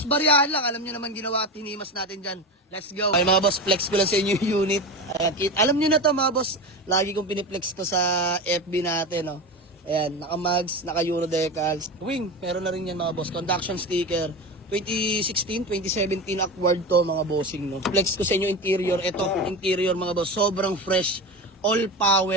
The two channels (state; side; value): normal; both; correlation 0.24